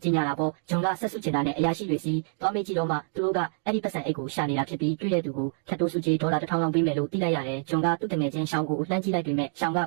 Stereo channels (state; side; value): silent; left; digital silence